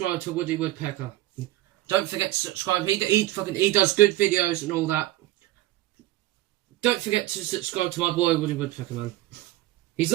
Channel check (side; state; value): left; quieter; 16.4 dB